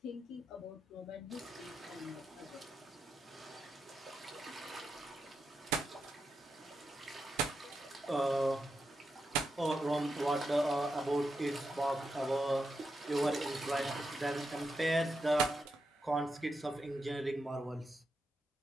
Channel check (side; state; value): both; normal; correlation 0.86